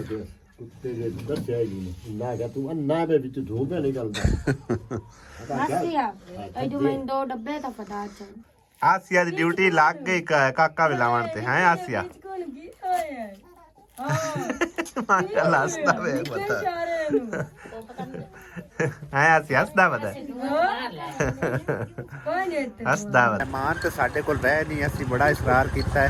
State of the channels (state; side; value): identical; both; correlation 1.00